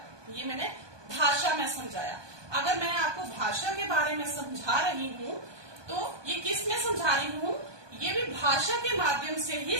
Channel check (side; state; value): left; late; 1.2 ms